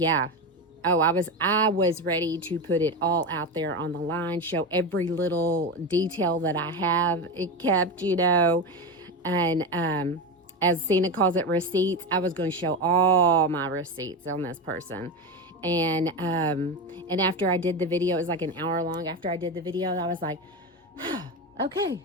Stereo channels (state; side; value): normal; both; correlation 0.18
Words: Oh, I was ready to put it all out there on the line, show every little detail that I have it kept, you know, and as Cena calls it, receipts. I was going to show all my receipts on this person. And after I did the video, it was like an hour long. After I did the video, I was like, okay,